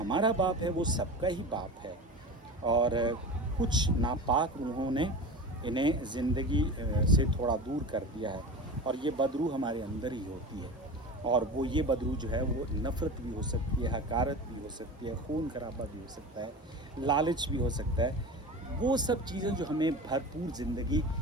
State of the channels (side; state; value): both; normal; correlation 0.30